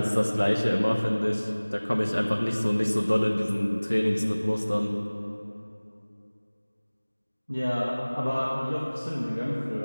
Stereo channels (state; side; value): inverted; both; correlation -1.00